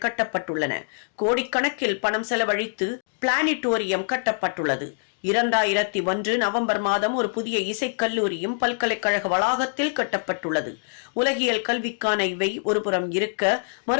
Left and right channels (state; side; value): silent; right; digital silence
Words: கட்டப்பட்டுள்ளன. கோடிக்கணக்கில் பணம் செலவழித்து பிளானிட்டோரியம் கட்டப்பட்டுள்ளது. 2001 நவம்பர் மாதம் ஒரு புதிய இசைக்கல்லூரியும் பல்கலைக்கழக வளாகத்தில் கட்டப்பட்டுள்ளது. உலகியல் கல்விக்கான இவை ஒருபுறம் இருக்க,